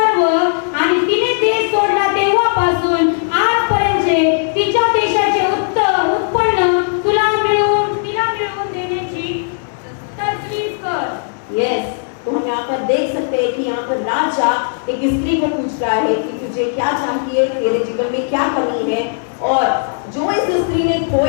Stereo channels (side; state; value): right; silent; 68 dB below the other